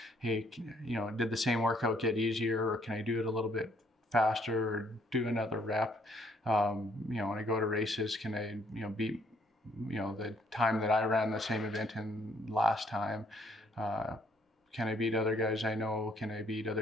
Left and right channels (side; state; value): both; normal; correlation 0.66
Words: Hey, did the same workout get easier, or can I do it a little bit faster or do another rep? When I go to races, can I, beat, the time that I ran the same event in last time? Can I beat other guys I know? Can I beat